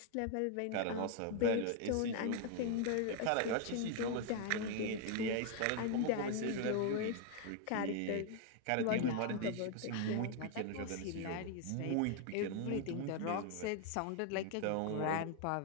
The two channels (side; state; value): both; different; correlation 0.00